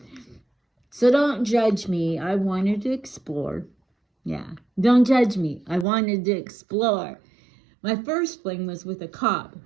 So don't judge me. I wanted to explore. Yeah, don't judge me. I wanted to explore. My first fling was with a cop.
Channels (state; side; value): drops out; left; at 5.9 s